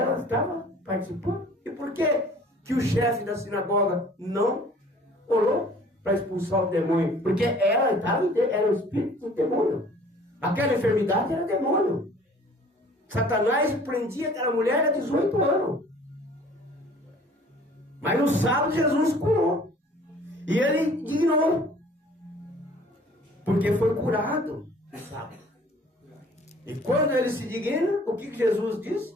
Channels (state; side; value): normal; both; correlation 0.52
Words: estava participando. E por que o chefe da sinagoga não orou para expulsar o demônio? Porque ela era o espírito do demônio. Aquela enfermidade era demônio. Satanás prendia aquela mulher há 18 anos. Mas no sábado Jesus curou. E ele dignou. Porque foi curado no sábado. E quando ele se digna, o que Jesus disse?